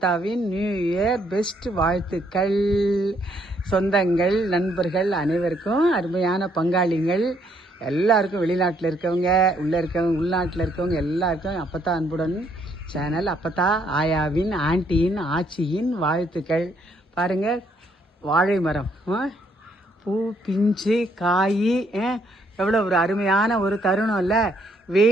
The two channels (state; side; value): normal; both; correlation 0.70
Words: நியூ இயர் பெஸ்ட் வாழ்த்துக்கள். சொந்தங்கள், நண்பர்கள் அனைவருக்கும், அருமையான பங்காளிகள் எல்லாருக்கும், வெளிநாட்டில் இருக்கவங்க, உள்ளே இருக்கவங்க, உள்நாட்டில் இருக்கவங்க எல்லாருக்கும் அப்பத்தா அன்புடன் சேனல், அப்பத்தா ஆயாவின், ஆண்டியின், ஆச்சியின் வாழ்த்துக்கள். பாருங்கள், வாழை மரம் பூ, பிஞ்சு, காய், எவ்வளோ ஒரு அருமையான ஒரு தருணம் இல்லை?